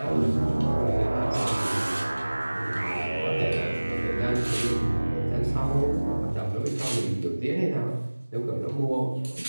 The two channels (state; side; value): inverted; both; correlation -1.00